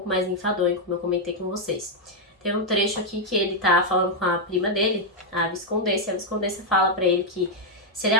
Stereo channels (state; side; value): normal; both; correlation -0.02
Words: mais enfadonho, como eu comentei com vocês. Tem um trecho aqui que ele tá falando com a prima dele, a Viscondessa, e a Viscondessa fala pra ele que se ele